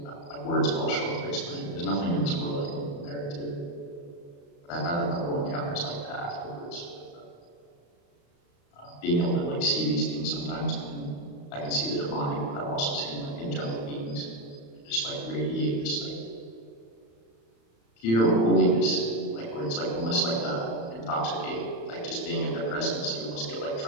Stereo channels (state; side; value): late; right; 35 ms